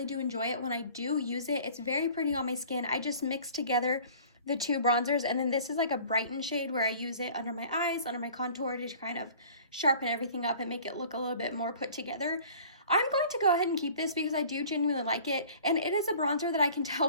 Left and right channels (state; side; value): inverted; both; correlation -0.48